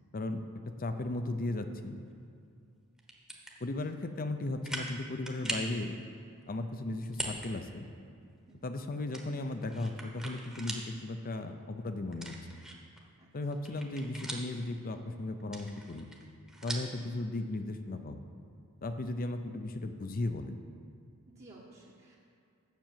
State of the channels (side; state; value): both; normal; correlation 0.70